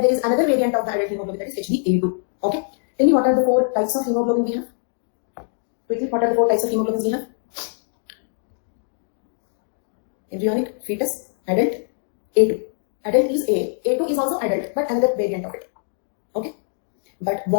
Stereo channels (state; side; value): silent; right; digital silence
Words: there is another variant of the adult hemoglobin that is HbA2. Okay. Tell me what are the 4 types of hemoglobin we have? Quickly, what are the 4 types of hemoglobins we have? Embryonic, fetus, adult, A2. Adult is A. A2 is also adult, but another variant of it. Okay. But